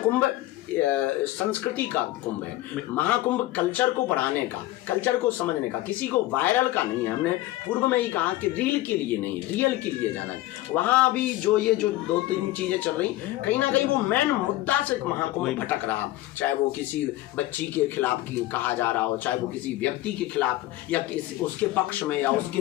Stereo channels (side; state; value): right; quieter; 16.5 dB